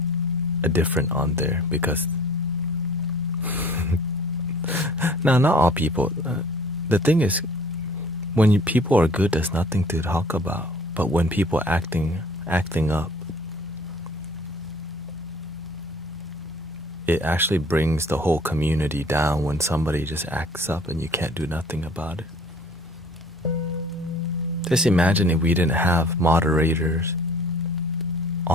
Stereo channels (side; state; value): both; normal; correlation 0.52